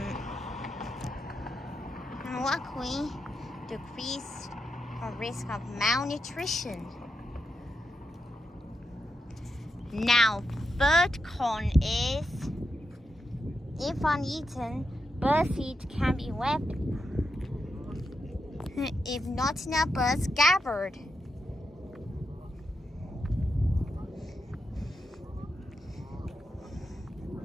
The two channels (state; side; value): normal; both; correlation 0.85